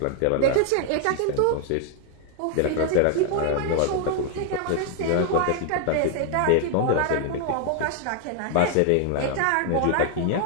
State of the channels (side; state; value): both; different; correlation 0.00